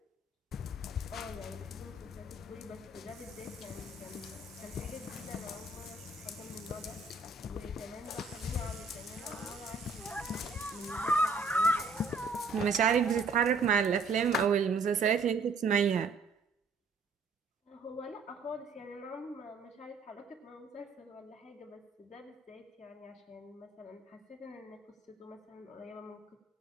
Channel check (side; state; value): left; quieter; 3.8 dB